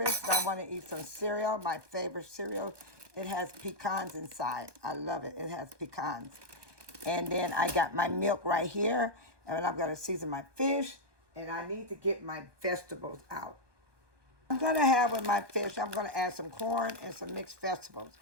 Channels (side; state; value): left; late; 1.2 ms